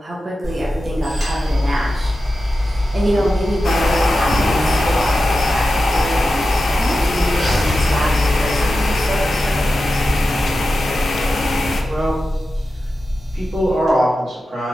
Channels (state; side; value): normal; both; correlation 0.92